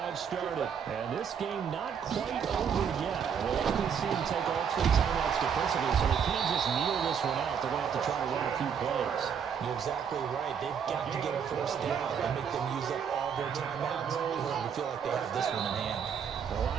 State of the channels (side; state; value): left; quieter; 7.4 dB